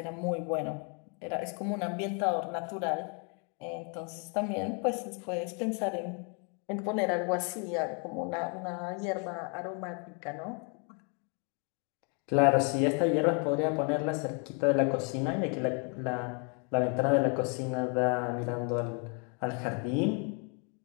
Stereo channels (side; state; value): right; quieter; 37.7 dB